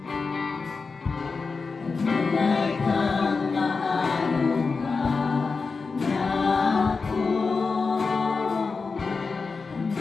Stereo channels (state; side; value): quieter; right; 4.5 dB